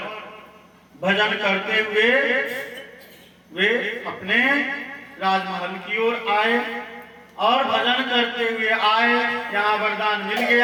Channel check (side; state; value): both; identical; correlation 1.00